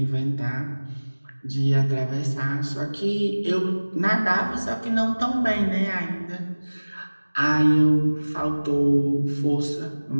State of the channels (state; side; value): inverted; both; correlation -1.00